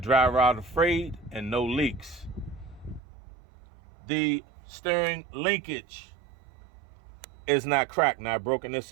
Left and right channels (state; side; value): drops out; left; at 3.0 s